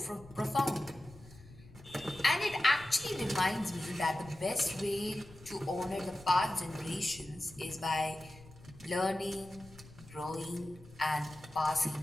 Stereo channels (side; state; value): left; noise; rumble, 20 dB below the sound